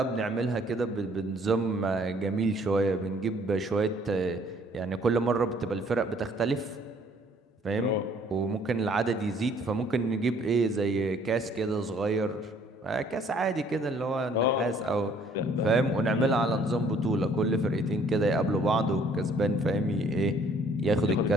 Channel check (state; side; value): normal; both; correlation 0.60